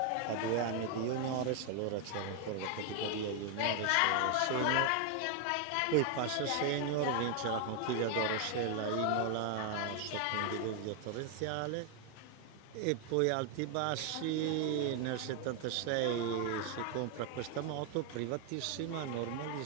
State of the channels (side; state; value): both; different; correlation 0.01